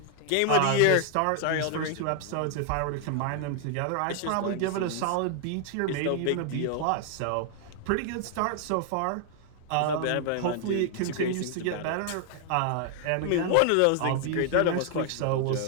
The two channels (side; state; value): both; different; correlation 0.00